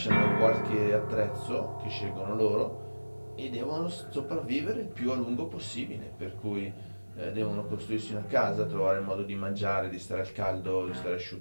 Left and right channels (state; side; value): inverted; both; correlation -1.00